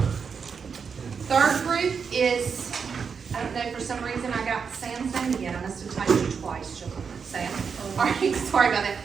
Third group is, I don't know, for some reason I got Sam's name again. I must have typed it twice, Sam. All right, sorry about that.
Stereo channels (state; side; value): quieter; left; 6.0 dB